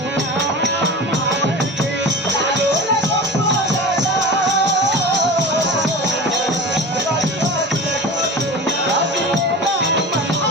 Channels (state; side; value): normal; both; correlation 0.32